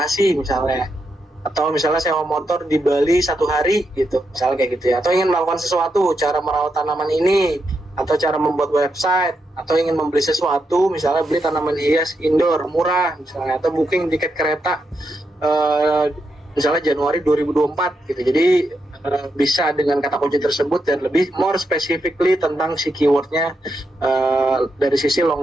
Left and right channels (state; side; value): normal; both; correlation 0.83